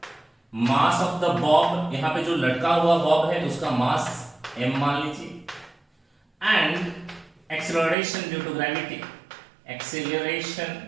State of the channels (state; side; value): drops out; left; at 8.0 s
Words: मास ऑफ द बॉब, यहां पे जो लटका हुआ बॉब है उसका मास m मान लीजिए, and acceleration due to gravity,